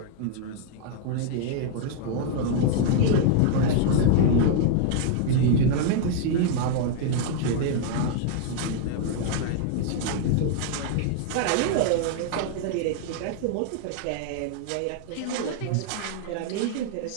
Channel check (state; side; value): different; both; correlation -0.01